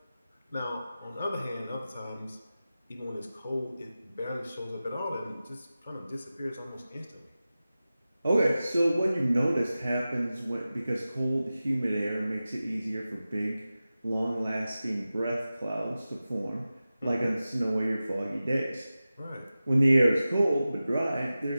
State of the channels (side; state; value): both; inverted; correlation -0.95